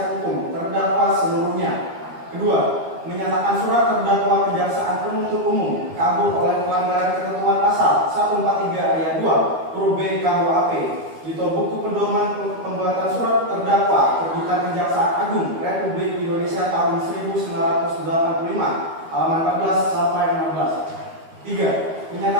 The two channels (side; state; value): left; late; 12 ms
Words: hukum terdakwa seluruhnya. Kedua, menyatakan surat terdakwa kejaksaan penuntut umum kabur oleh pelanggaran ketentuan pasal 143 ayat 2 huruf B KUHP atau buku pedoman pembuatan surat terdakwa terbitan Kejaksaan Agung Republik Indonesia tahun 1985 halaman 14 sampai 16. 3.